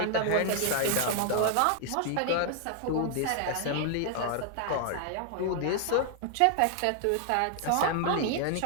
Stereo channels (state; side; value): different; both; correlation 0.00